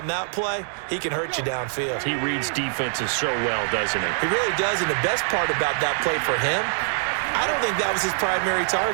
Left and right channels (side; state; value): left; silent; digital silence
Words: that play, he can hurt you downfield. He reads defenses so well, doesn't he? He really does, and the best part about that play for him, I don't think that was his primary